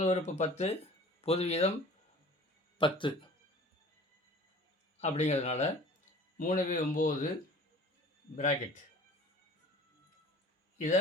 உறுப்பு 10, பொது வீதம் 10 அப்படிங்கிறதுனால 3/9 பிராக்கெட் இதை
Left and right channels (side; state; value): both; normal; correlation 0.46